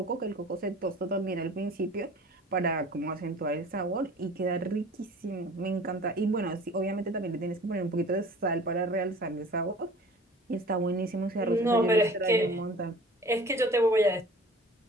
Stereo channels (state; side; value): normal; both; correlation 0.45